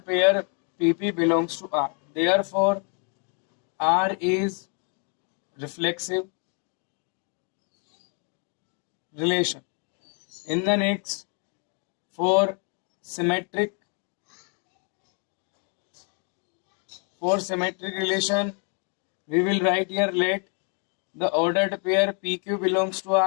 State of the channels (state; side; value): quieter; right; 39.7 dB